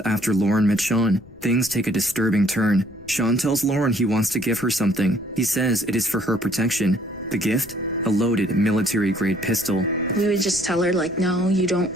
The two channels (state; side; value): noise; left; rumble, 22 dB below the sound